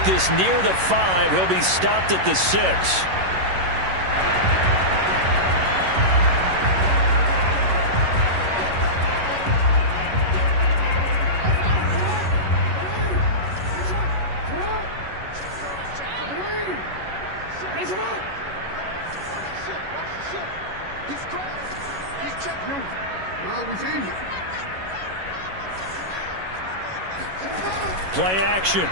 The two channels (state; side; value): late; left; 11 ms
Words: this near the 5. He'll be stopped at the 6. Play action.